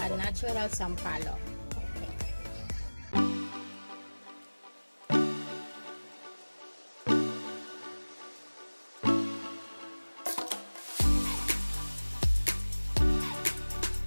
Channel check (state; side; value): inverted; both; correlation -1.00